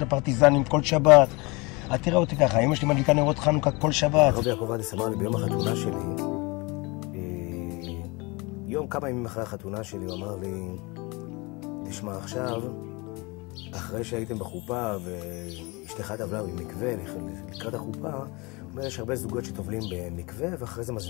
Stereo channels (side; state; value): right; quieter; 26.4 dB